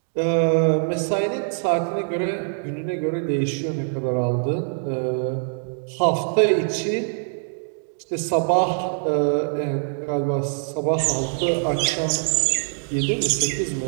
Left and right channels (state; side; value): silent; left; digital silence